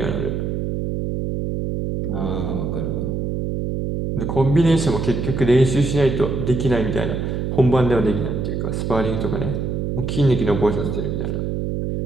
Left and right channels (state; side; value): noise; right; hum, 2 dB below the sound